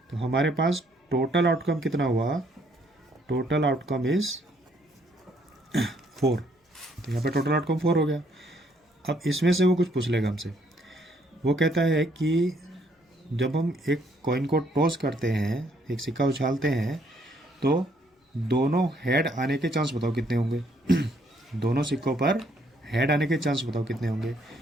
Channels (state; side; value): normal; both; correlation 0.68